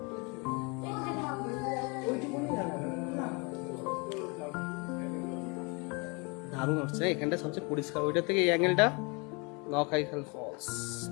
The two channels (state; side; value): quieter; right; 30.7 dB